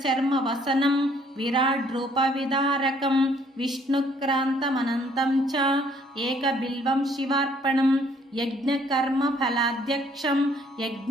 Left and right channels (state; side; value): normal; both; correlation 0.63